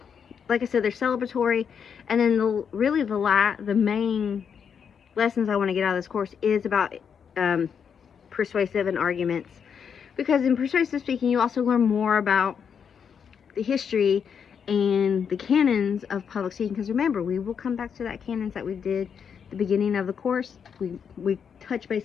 like I said, they're celebratory, and then the main lessons I want to get out of this course is about persuasive and arguments, because in persuasive speaking you also learn more about the history and the canons of public speaking, because remember, we will come back to that canons that we did at the beginning of the course. We touch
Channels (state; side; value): quieter; right; 7.1 dB